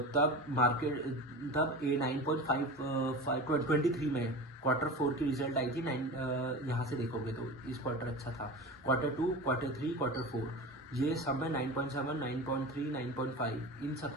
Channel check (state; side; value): normal; both; correlation 0.31